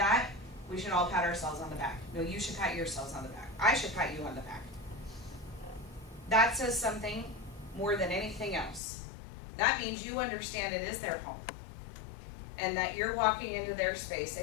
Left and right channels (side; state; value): right; drops out; at 8.8 s